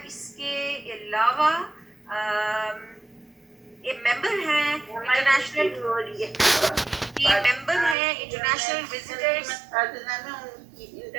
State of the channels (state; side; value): drops out; left; at 8.0 s